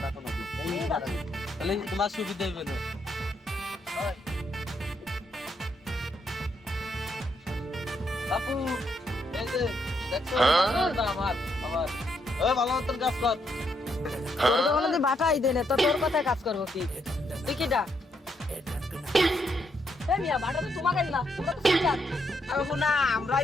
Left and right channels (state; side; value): normal; both; correlation 0.76